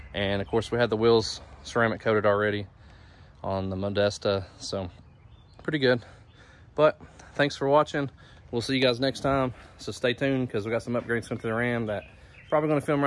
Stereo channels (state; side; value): identical; both; correlation 1.00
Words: And of course, we had the wheels ceramic coated already on the Modesta, so pretty good. But thanks for watching. We'll see you guys next time, so stay tuned because we got some upgrades coming to the Ram that probably going to film